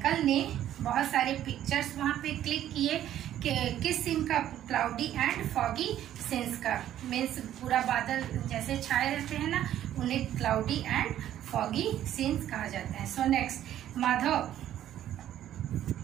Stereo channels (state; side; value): quieter; left; 11.8 dB